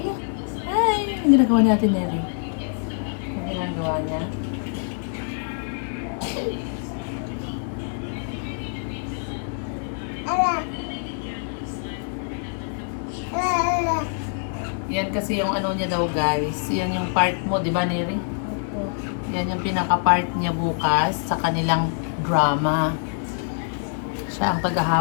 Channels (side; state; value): right; silent; 62 dB below the other